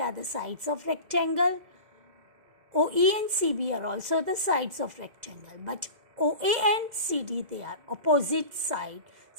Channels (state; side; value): late; left; 2.0 ms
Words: are the sides of rectangle. OE and CB are also the sides of rectangle, but OA and CD, they are opposite side.